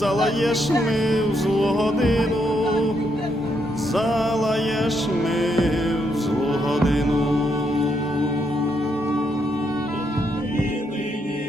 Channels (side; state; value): both; normal; correlation 0.77